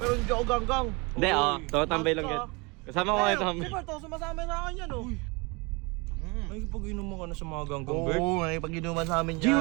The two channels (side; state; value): left; quieter; 28.1 dB